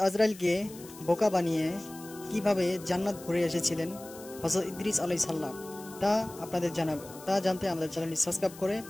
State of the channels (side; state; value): left; noise; hiss, 18 dB below the sound